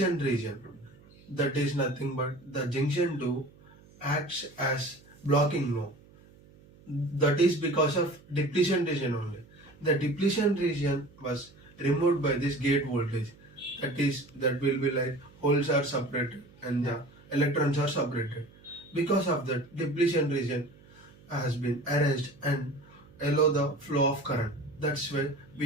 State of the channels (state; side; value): noise; right; hum, 25 dB below the sound